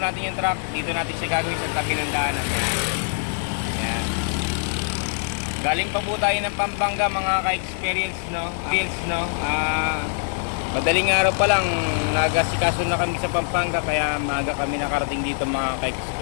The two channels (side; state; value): right; silent; digital silence